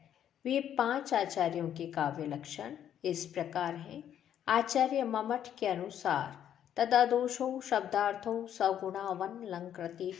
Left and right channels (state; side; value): quieter; right; 10.0 dB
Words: वे 5 आचार्यों के काव्य लक्षण इस प्रकार हैं। आचार्य ममट के अनुसार तदादोषौ शब्दार्थौ सगुणावन लंकृति